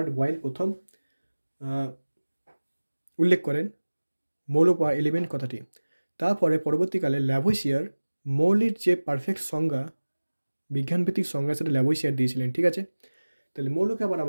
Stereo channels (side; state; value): both; inverted; correlation -1.00